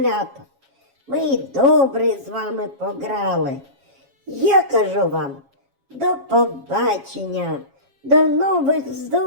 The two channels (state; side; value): late; left; 7.3 ms